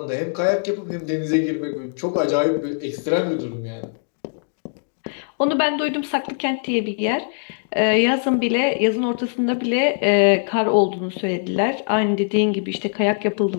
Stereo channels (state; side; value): silent; right; digital silence